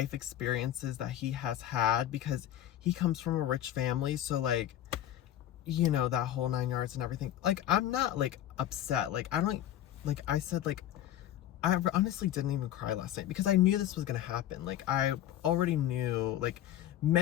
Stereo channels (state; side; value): quieter; right; 12.0 dB